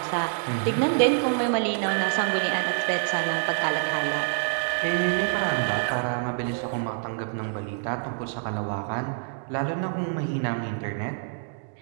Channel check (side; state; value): left; silent; digital silence